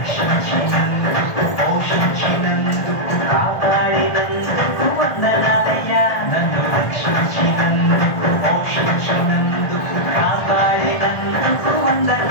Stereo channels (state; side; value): late; right; 1.5 ms